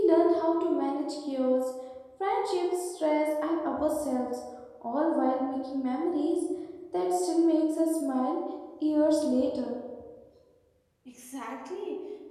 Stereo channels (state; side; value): identical; both; correlation 1.00